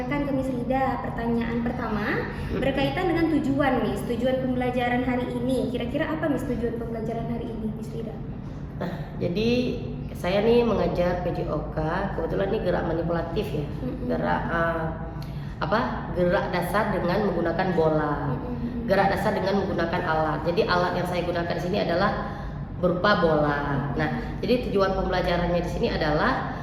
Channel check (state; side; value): identical; both; correlation 1.00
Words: ke Miss Rida. Pertanyaan pertama berkaitan dengan tujuan Miss, tujuan pembelajaran hari ini. Kira-kira apa Miss tujuan pembelajaran hari ini Miss Rida? Nah, jadi saya nih mengajar PJOK, kebetulan ini gerak manipulatif ya. Gerak dasar dengan menggunakan bola. Gerak dasar dengan menggunakan alat. Jadi alat yang saya gunakan di sini adalah berupa bola. Nah, jadi tujuan pembelajarannya di sini adalah